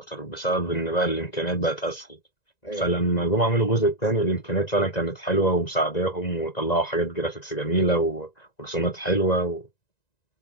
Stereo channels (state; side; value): late; right; 1.9 ms